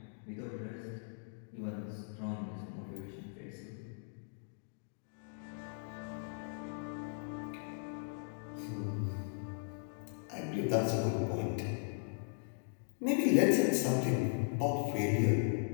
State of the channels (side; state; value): right; silent; digital silence